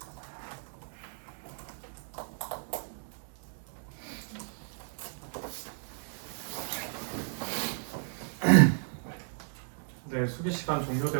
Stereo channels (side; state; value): left; silent; 55 dB below the other